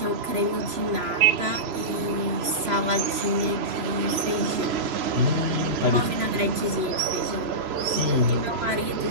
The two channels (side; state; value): left; late; 3.0 ms